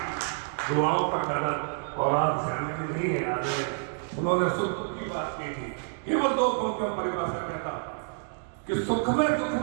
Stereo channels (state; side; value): silent; left; digital silence